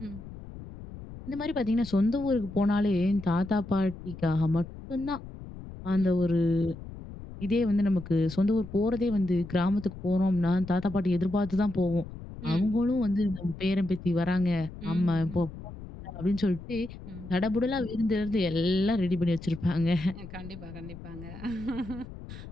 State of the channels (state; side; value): noise; left; rumble, 13 dB below the sound